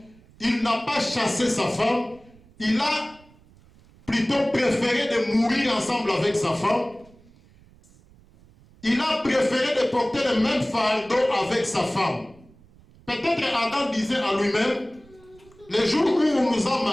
Il n'a pas chassé sa femme. Il a plutôt préféré de mourir ensemble avec sa femme. Il a préféré de porter le même fardeau avec sa femme. Peut-être Adam disait en lui-même, le jour où on nous a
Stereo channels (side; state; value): right; noise; rumble, 27 dB below the sound